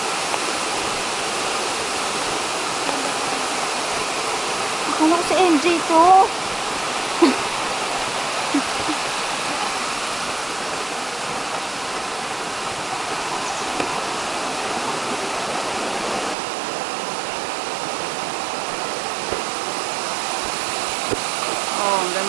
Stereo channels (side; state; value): left; drops out; at 16.4 s